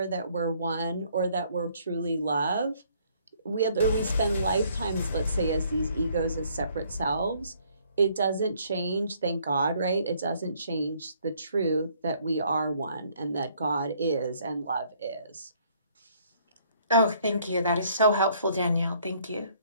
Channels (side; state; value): both; inverted; correlation -0.64